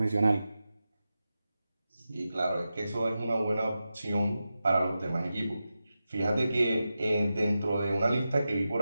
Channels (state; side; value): inverted; both; correlation -0.92